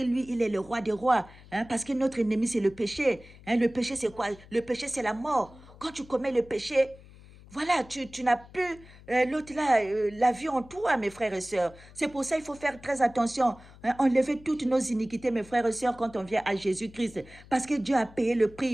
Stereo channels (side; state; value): left; noise; hum, 21 dB below the sound